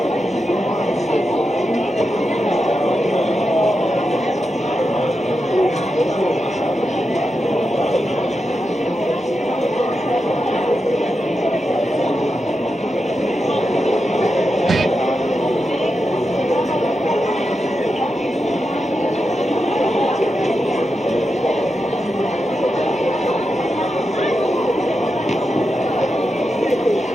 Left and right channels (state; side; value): normal; both; correlation 0.88